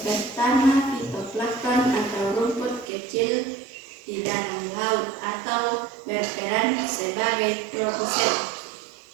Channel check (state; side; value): drops out; left; at 2.9 s